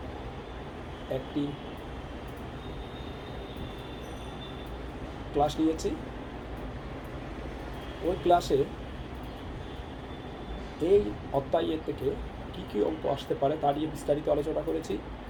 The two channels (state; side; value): identical; both; correlation 1.00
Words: একটি ক্লাস নিয়েছি। ওই ক্লাসে এই অধ্যায়ের থেকে কী কী অঙ্ক আসতে পারে তা নিয়ে বিস্তারিত আলোচনা করেছি।